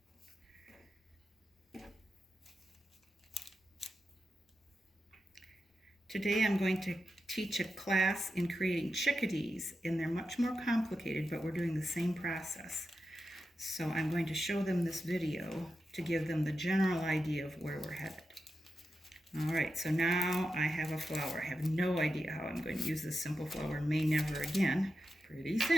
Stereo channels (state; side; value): normal; both; correlation 0.89